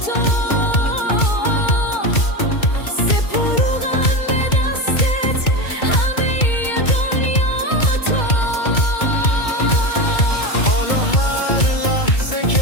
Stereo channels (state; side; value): late; right; 2.2 ms